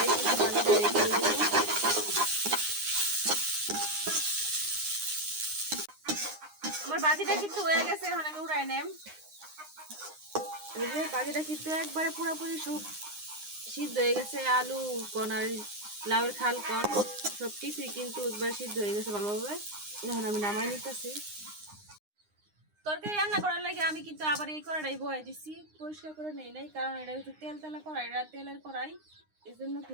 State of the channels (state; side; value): late; left; 9.7 ms